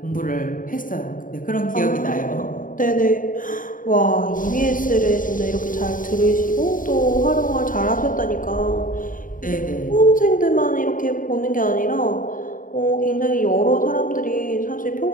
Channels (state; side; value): late; right; 0.39 ms